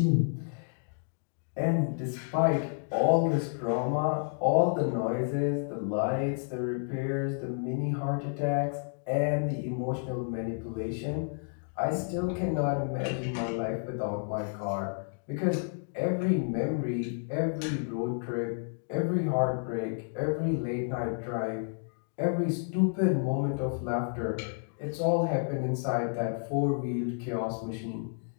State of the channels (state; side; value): silent; right; digital silence